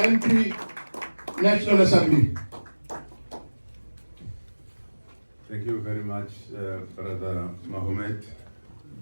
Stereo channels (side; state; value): both; inverted; correlation -1.00